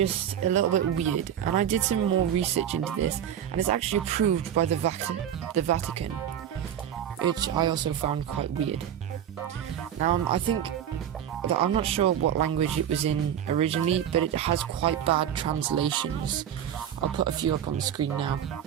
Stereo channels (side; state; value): left; quieter; 9.7 dB